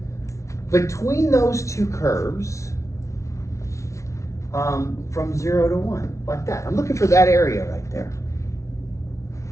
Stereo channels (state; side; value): late; right; 0.14 ms